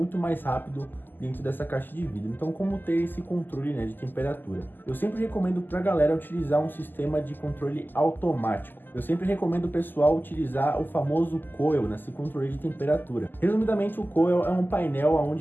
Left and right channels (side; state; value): right; late; 0.090 ms